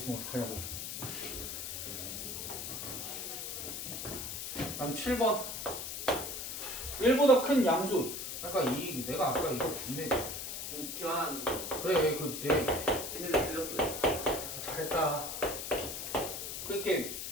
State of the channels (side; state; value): left; noise; hiss, 5 dB below the sound